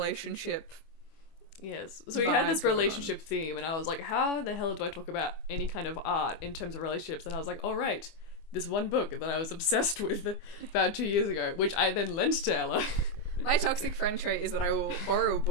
Yes. So we had this relationship theme, and I was like, how the hell do I talk about any kind of art in terms of relationships? And I was like, all right, this one book that I was obsessed with about 2 years ago, which I then lent to Ella. My toxic friend trait is that I will borrow a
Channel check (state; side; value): late; right; 25 ms